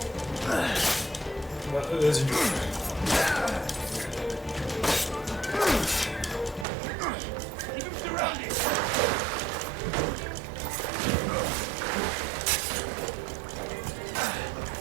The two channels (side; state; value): left; drops out; at 6.7 s